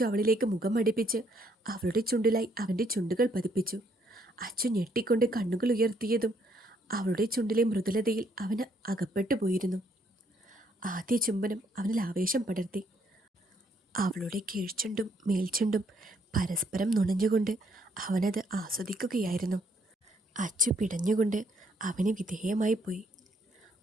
അവളിലേക്ക് മുഖം അടുപ്പിച്ച് അവളുടെ ചുണ്ടിലായി അവൻ്റെ ചുണ്ടുകൾ പതിപ്പിച്ചു. അച്ചു ഞെട്ടിക്കൊണ്ട് കണ്ണുകൾ ഉയർത്തിയതും അവളുടെ ചുണ്ടിലെ മൃദുലതയിൽ അവന് അകപ്പെട്ടു പോയിരുന്നു. ആദ്യ ചുംബനം അവനിൽ ആവേശം പടർത്തി. അവളുടെ കീഴ്ചുണ്ടും മേൽചുണ്ടും പരസ്പരം നുണഞ്ഞുകൊണ്ട് അവനത് ആസ്വദിക്കുകയായിരുന്നു. അച്ചു പിടഞ്ഞുകൊണ്ട് അവന് വിധേയമായി പോയി.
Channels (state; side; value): normal; both; correlation 0.69